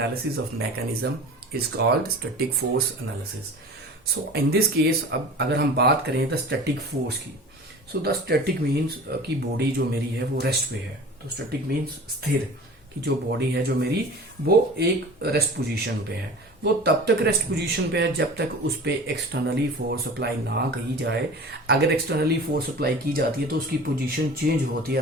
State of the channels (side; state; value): both; normal; correlation 0.38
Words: of mechanism is called static force analysis. So in this case, अब अगर हम बात करें the static force की, so the static means कि body जो मेरी है वो रेस्ट पे है. तो स्टैटिक मीन्स स्थिर, कि जो बॉडी है जो मेरी वो एक रेस्ट पोजीशन पे है. वो तब तक रेस्ट पोजीशन पे है जब तक उस पे एक्सटर्नली फोर्स अप्लाई ना की जाए. अगर एक्सटर्नली फोर्स अप्लाई की जाती है तो उसकी पोजीशन चेंज होती